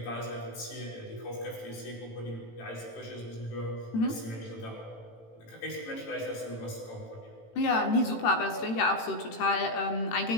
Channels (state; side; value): late; right; 18 ms